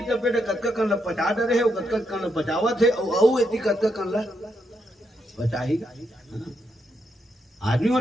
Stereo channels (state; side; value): normal; both; correlation 0.80